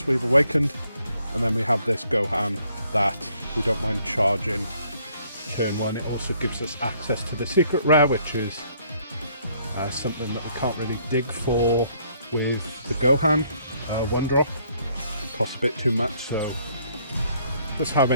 we've awakened, and then we have this Gohan that we don't mind charging turn 1. It also gives us access to the secret rare, which is something that we can't really dig for with the Gohan. One drop costs a bit too much, so just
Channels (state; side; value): inverted; both; correlation -0.66